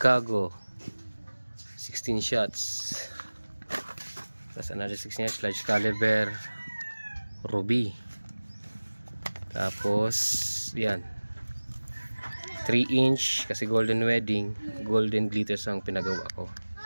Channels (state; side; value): inverted; both; correlation -1.00